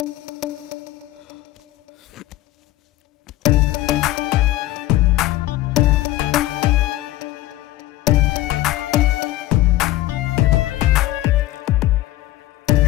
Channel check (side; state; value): right; quieter; 16.0 dB